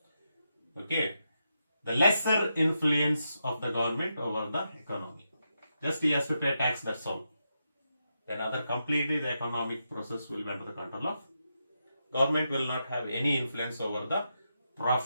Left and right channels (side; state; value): both; inverted; correlation -0.85